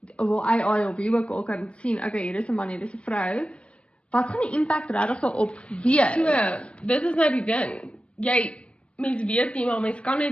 wil AI of wie ook al kan sien, okay, hier is 'n man, hier is 'n vrou. Wat gaan die impact regtig daarop wees? So, dit is nou die ding. Mens weet nie, maar mens kan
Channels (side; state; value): right; late; 0.060 ms